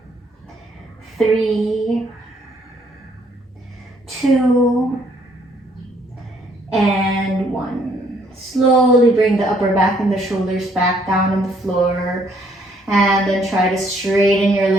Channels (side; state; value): both; normal; correlation 0.66